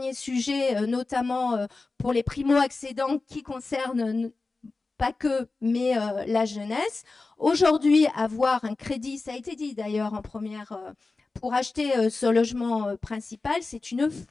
sujet, notamment pour les primo-accédants qui concerne pas que, mais la jeunesse. Aujourd'hui, avoir un crédit, ça a été dit d'ailleurs en première pour acheter ce logement principal, c'est une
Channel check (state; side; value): quieter; right; 3.7 dB